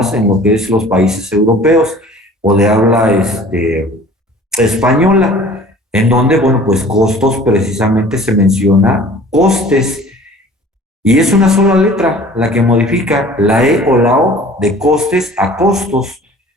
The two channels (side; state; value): both; normal; correlation 0.47